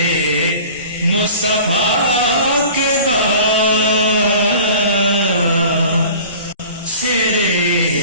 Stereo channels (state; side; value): inverted; both; correlation -0.42